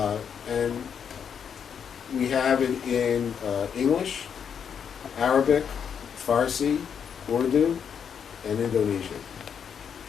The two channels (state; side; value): quieter; right; 7.5 dB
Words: And we have it in English, Arabic, Farsi, Urdu, and Indonesian.